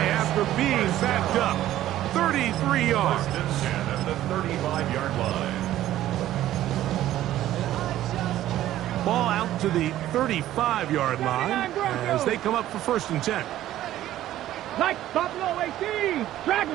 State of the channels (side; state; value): left; quieter; 13.5 dB